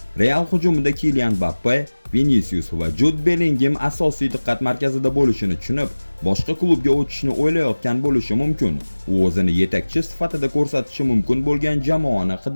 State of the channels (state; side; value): inverted; both; correlation -1.00